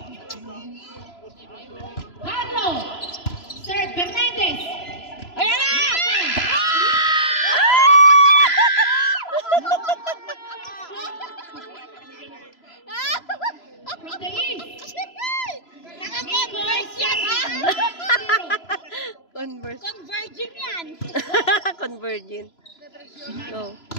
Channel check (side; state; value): right; late; 3.0 ms